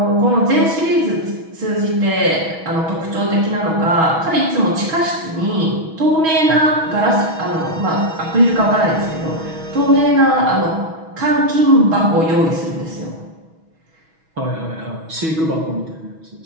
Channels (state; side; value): late; left; 6.2 ms